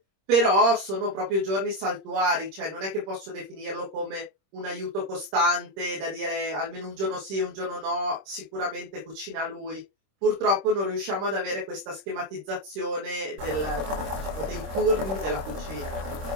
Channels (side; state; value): left; late; 26 ms